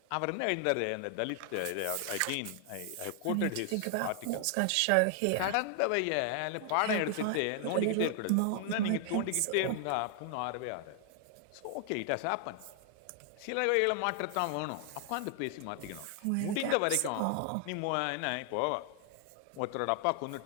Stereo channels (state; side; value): different; both; correlation 0.00